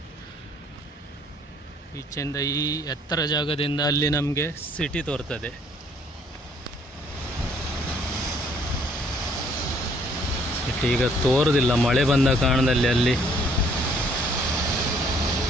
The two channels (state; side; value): normal; both; correlation 0.62